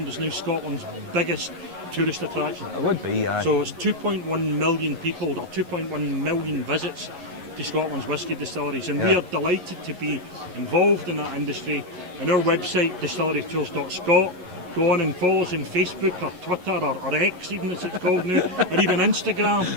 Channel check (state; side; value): late; left; 11 ms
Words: is now Scotland's biggest tourist attraction. It would be. So it's 2.1 million people, or 2.1 million visits to Scotland's whisky distilleries, and we are delighted to be involved in that industry. And our website, distillerytours.scot, go on and follow us on Facebook or Twitter or X, even as it's called now, or even Instagram,